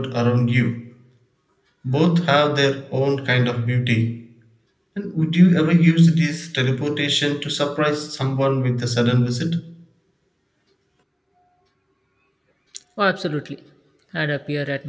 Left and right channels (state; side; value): identical; both; correlation 1.00